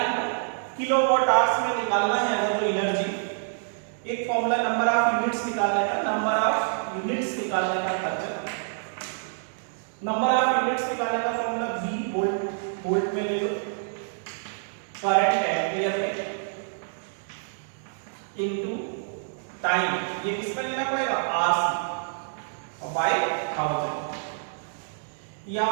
किलोवाट आवर्स में निकालना है अगर जो एनर्जी, एक फॉर्मूला नंबर ऑफ यूनिट्स निकालने का, नंबर ऑफ यूनिट्स निकालने का खर्चा, नंबर ऑफ यूनिट्स निकालने का फॉर्मूला V वोल्ट में ले लो, करंट एम्पियर में इनटू टाइम, ये किसमें लेना पड़ेगा आवर्स और बाय 1000, या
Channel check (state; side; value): silent; left; digital silence